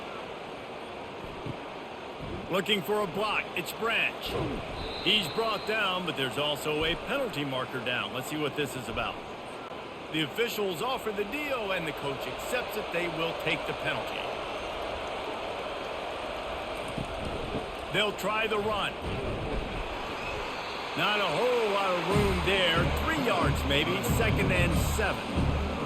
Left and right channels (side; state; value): both; identical; correlation 1.00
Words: Looking for a block. It's Branch. He's brought down, but there's also a penalty marker down. Let's see what this is about. The officials offer the deal, and the coach accepts it. They will take the penalty. They'll try the run. Not a whole lot of room there. 3 yards maybe, 2nd and 7.